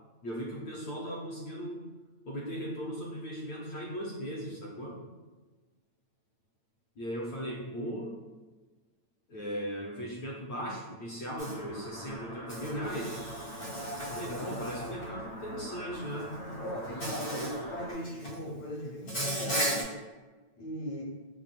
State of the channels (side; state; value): right; late; 8.9 ms